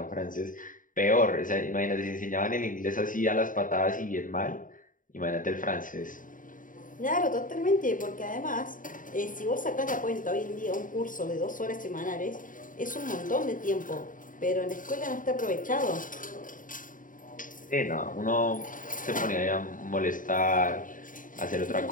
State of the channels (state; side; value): late; right; 0.39 ms